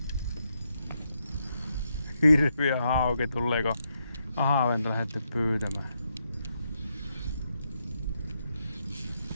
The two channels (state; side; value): inverted; both; correlation -0.80